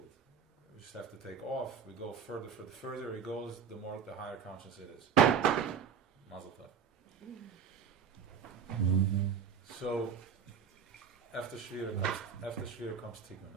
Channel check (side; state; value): left; quieter; 7.0 dB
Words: We just have to take off. We go further. The further it goes, the higher conscious it is. Mazel tov. So after Shiur comes